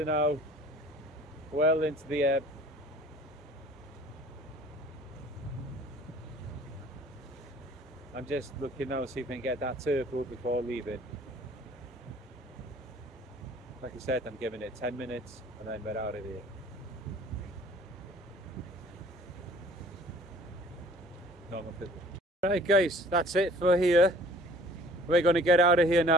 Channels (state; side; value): normal; both; correlation 0.51